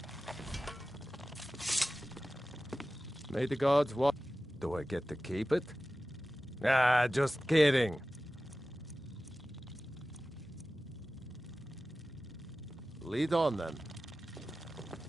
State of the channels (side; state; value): both; normal; correlation 0.96